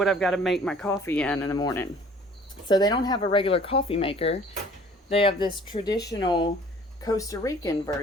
I've got to make my coffee in the morning. So they don't have a regular coffee maker. They have this traditional Costa Rican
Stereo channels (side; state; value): both; normal; correlation 0.52